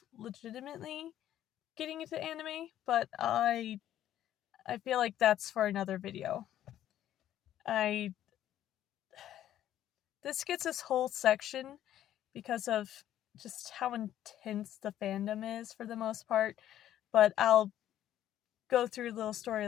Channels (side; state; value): right; quieter; 11.9 dB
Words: legitimately getting into anime, but I feel like that's for another video. This gets this whole section because of just how intense the fandom is for the most part, but I'll go through little